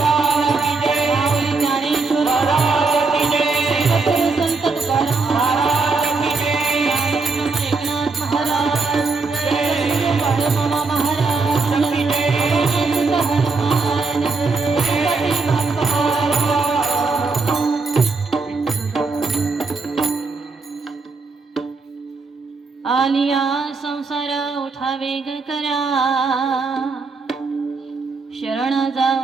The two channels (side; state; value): left; quieter; 4.1 dB